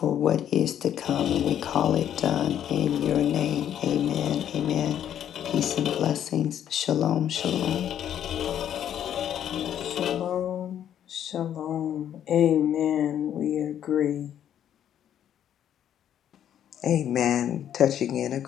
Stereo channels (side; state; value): right; quieter; 10.1 dB